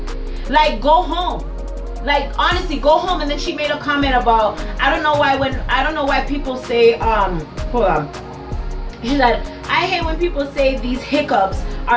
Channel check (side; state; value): both; identical; correlation 1.00